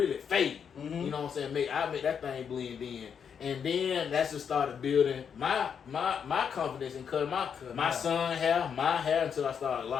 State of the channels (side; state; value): right; quieter; 7.3 dB